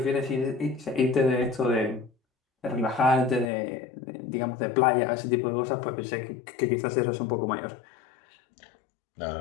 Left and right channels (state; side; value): drops out; right; at 3.5 s